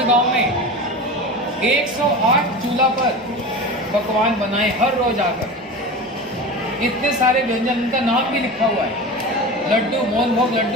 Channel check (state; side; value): normal; both; correlation 0.30